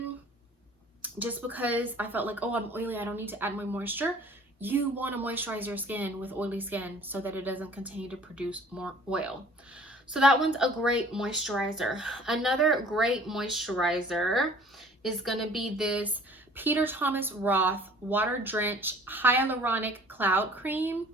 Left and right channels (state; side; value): normal; both; correlation 0.51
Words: just because I felt like, oh, I'm oily, I don't need to add more moisture. You want to moisturize your skin with oily skin so that it doesn't continue to produce more oil. So that one's a great moisturizer. Another great moisturizer is going to be this Peter Thomas Roth Water Drench Hyaluronic Cloud Cream.